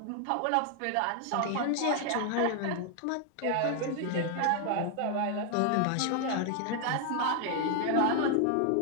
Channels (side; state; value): both; different; correlation 0.00